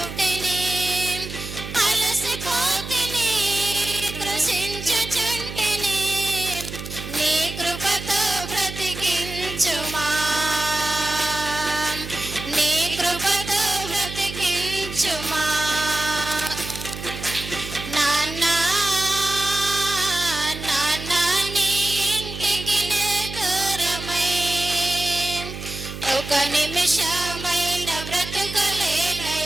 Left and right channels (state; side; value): noise; right; hum, 9 dB below the sound